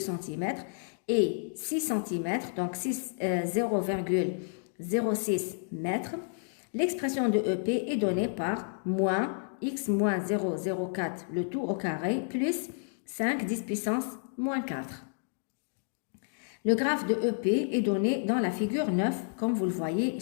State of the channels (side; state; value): right; silent; digital silence